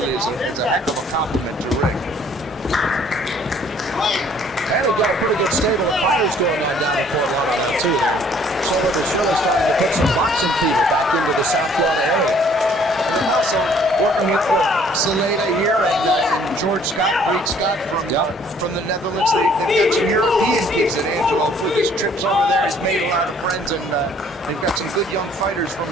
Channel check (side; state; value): both; normal; correlation 0.59